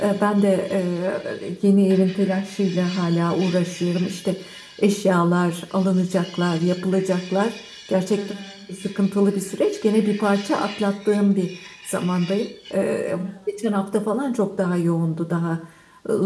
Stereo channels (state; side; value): identical; both; correlation 1.00